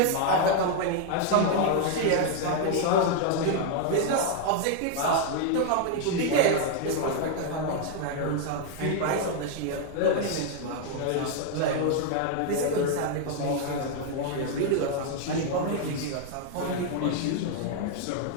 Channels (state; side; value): different; both; correlation 0.00